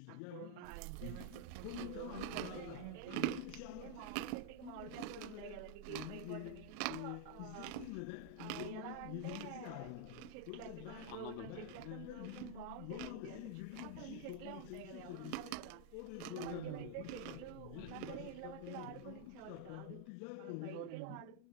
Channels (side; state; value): both; different; correlation 0.00